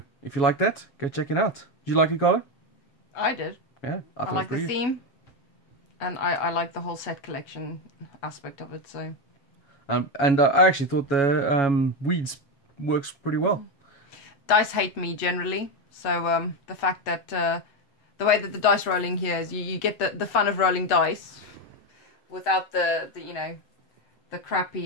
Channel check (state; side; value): late; right; 8.0 ms